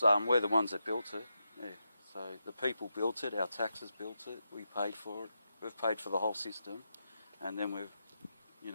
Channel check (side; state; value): both; inverted; correlation -0.86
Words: we're the ones that built it. Yeah. So the people built it, our taxes built it, we paid for it. We've paid for the whole system, and then we've,